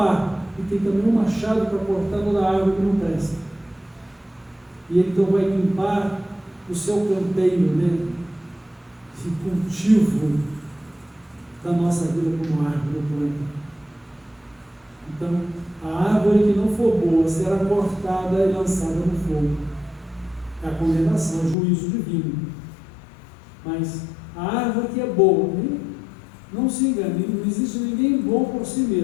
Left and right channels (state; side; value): drops out; right; at 21.6 s